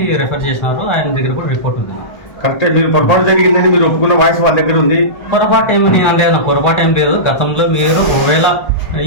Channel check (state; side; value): late; right; 1.3 ms